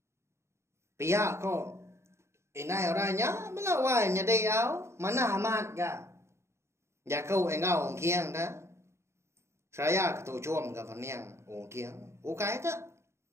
Pihak kok. Indai orangnya melawan nyedai au. Mana amat ga. Ya kau engau kiang dah. Saya ketujuan ke peniang ungkiang. Ukai tak?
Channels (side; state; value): left; late; 0.13 ms